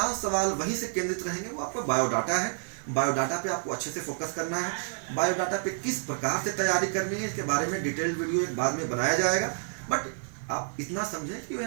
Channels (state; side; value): silent; left; digital silence